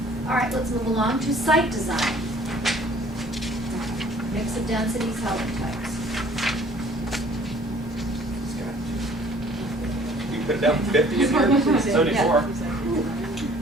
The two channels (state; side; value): normal; both; correlation 0.54